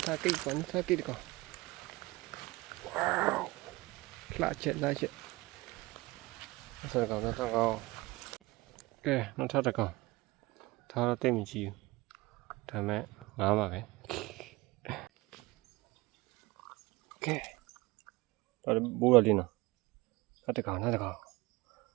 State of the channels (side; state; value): left; quieter; 21.8 dB